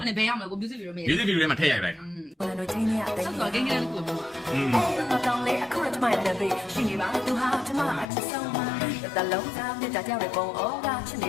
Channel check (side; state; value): right; drops out; at 8.1 s